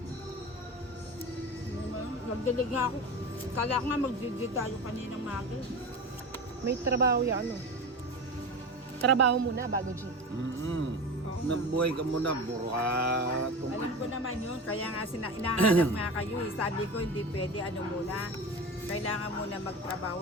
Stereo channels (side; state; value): both; normal; correlation 0.28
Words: Nagdalig nga ako. Kala ko nga mag-judge tayo kaninang maga. May trabaho yan, ano? Trabaho muna bago G. Nabuhay ka muna, burat. Alam ko naman yun. Kaya nga inahanap nga kayo. Sabi ko hindi pwede ano muna. Kailangan muna